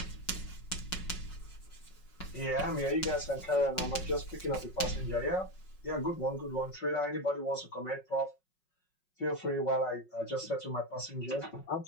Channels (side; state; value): right; late; 5.5 ms